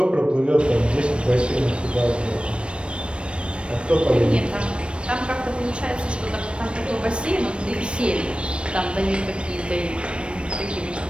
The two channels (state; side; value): late; left; 0.058 ms